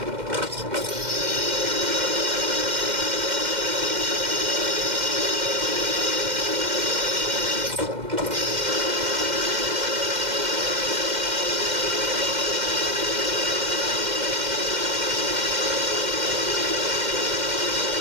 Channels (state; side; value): late; left; 2.1 ms